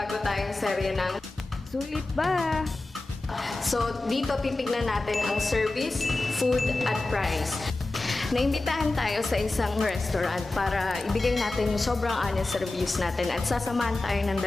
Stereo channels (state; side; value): quieter; right; 3.0 dB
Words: tayong serye ng Sulit ba? So dito titignan natin ang service, food at price. Naimbitahan tayo sa isang restaurant para ibigay natin yung sobrang honest reviews natin at sasamahan tayo ng